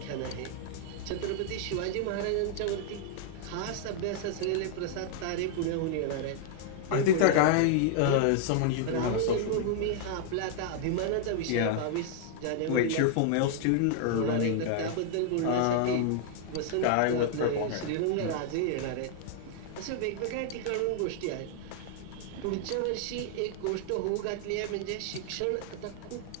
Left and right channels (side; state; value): both; different; correlation -0.01